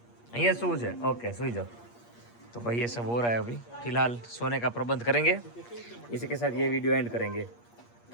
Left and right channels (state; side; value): late; right; 8.5 ms